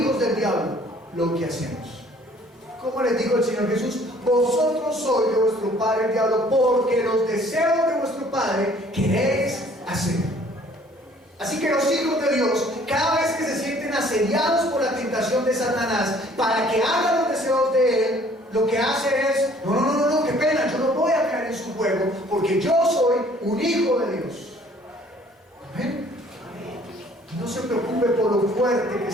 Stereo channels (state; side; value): normal; both; correlation 0.57